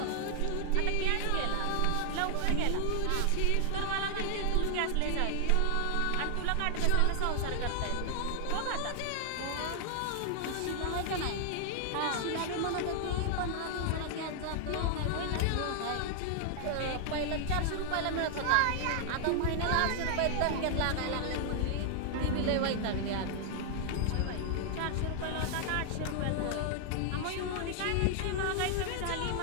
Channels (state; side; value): different; both; correlation 0.00